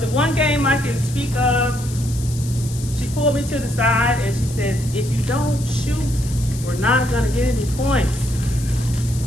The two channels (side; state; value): left; noise; hiss, 14 dB below the sound